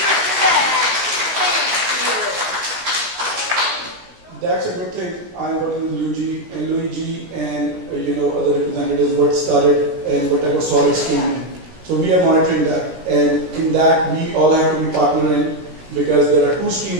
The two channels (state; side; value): late; left; 17 ms